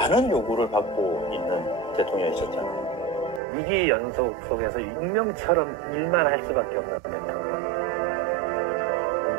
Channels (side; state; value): left; drops out; at 3.4 s